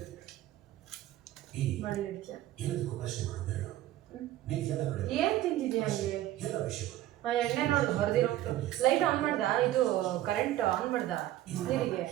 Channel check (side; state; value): left; quieter; 14.0 dB